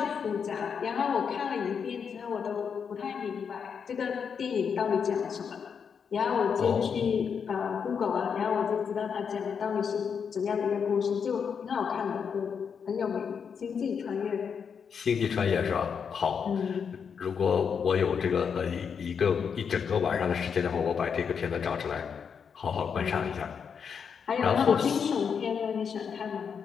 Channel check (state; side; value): quieter; right; 6.7 dB